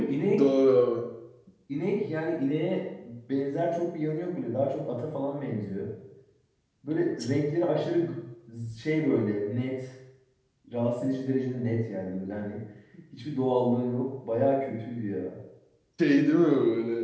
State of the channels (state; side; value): identical; both; correlation 1.00